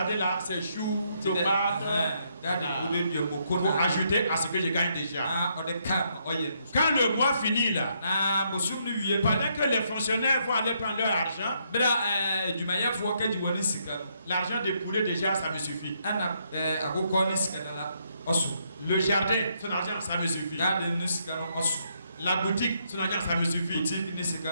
là, c'est choux, tomates, pour ajouter à ce que je gagne déjà. Quand le mois finit là, pendant que les fonctionnaires vont aller prendre leur argent, l'argent des poulets déjà, ça me suffit. Le jardin, son argent, ça me suffit. La boutique, son argent, ça me suffit.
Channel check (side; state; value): both; inverted; correlation -0.74